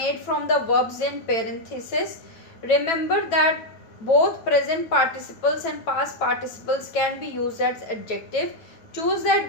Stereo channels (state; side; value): late; right; 9.0 ms